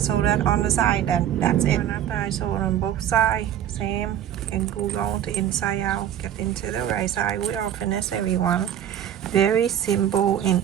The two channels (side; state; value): left; quieter; 10.5 dB